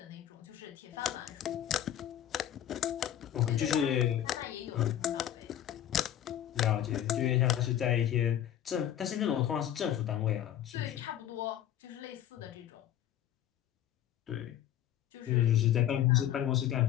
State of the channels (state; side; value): quieter; right; 11.2 dB